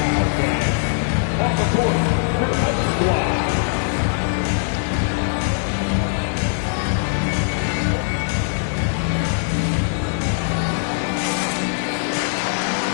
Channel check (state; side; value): silent; right; digital silence